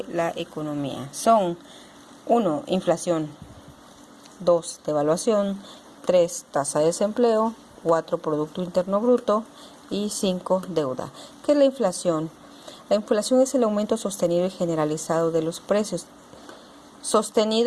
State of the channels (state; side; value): identical; both; correlation 1.00